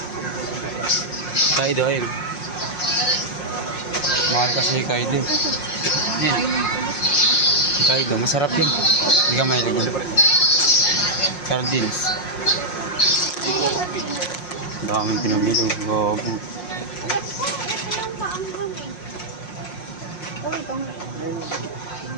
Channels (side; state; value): right; late; 5.6 ms